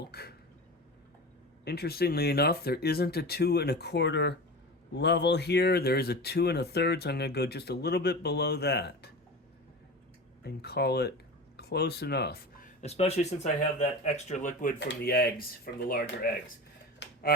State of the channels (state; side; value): normal; both; correlation 0.30